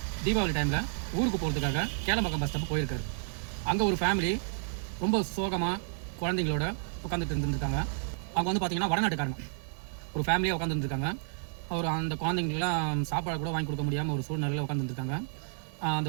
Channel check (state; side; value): silent; left; 57 dB below the other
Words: தீபாவளி டைமில் ஊருக்கு போகிறதுக்காக கேளம்பாக்கம் பஸ் ஸ்டாப் போயிருக்காரு. அங்கே ஒரு ஃபேமிலி ரொம்ப சோகமாக குழந்தைங்களோட உட்காந்துட்டு இருந்துருக்காங்க. அவங்க வந்து பார்த்திங்கன்னா வடநாட்டுக்காரங்க. ஒரு ஃபேமிலியாக உட்காந்துருந்துருக்காங்க. அவர் அந்த குழந்தைங்களுக்குலாம் சாப்பாடு கூட வாங்கி கொடுக்க முடியாமல் ஒரு சூழ்நிலையில் உட்காந்துருந்துருக்காங்க.